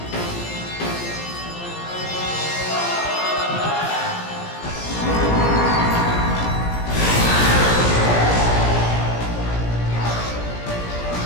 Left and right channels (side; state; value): right; late; 17 ms